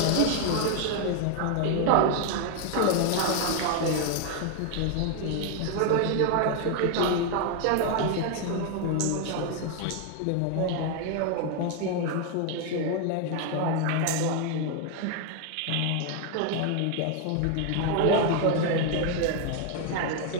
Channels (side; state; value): both; different; correlation 0.01